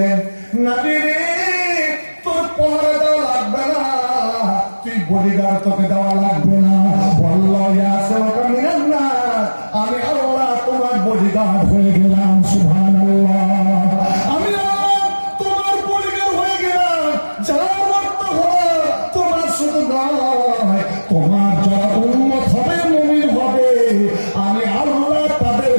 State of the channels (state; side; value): inverted; both; correlation -1.00